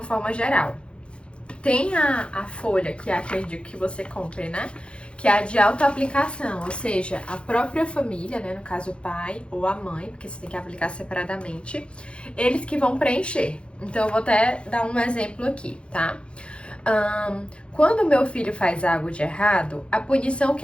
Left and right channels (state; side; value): late; right; 0.057 ms